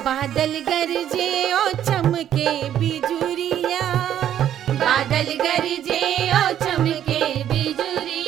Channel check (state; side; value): quieter; left; 10.6 dB